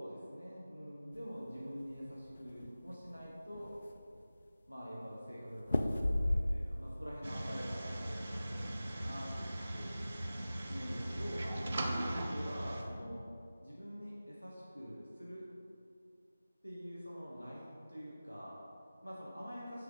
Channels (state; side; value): inverted; both; correlation -0.96